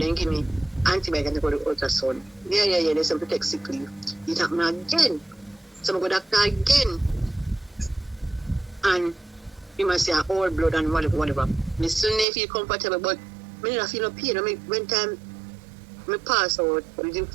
give me antibiotics and go to ultrasound. Yeah, there's some protect sick leave. It happened again. So I go doctor again. And he must say all blood and whatever. Me still never feel comfortable, but I don't feel no pain. I mean, when time I pass out,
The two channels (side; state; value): left; drops out; at 12.2 s